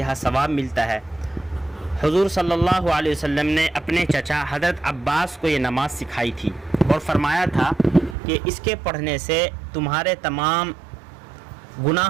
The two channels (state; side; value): drops out; left; at 8.2 s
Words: ثواب ملتا ہے۔ حضور صلی اللہ علیہ وسلم نے اپنے چچا حضرت عباس کو یہ نماز سکھائی تھی اور فرمایا تھا کہ اس کے پڑھنے سے تمہارے تمام